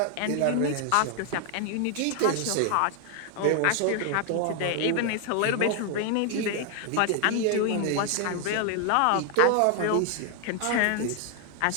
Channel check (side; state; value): both; different; correlation 0.00